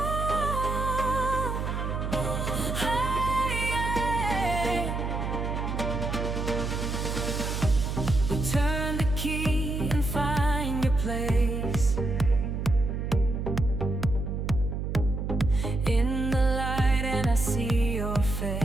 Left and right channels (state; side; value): noise; right; hum, 2 dB below the sound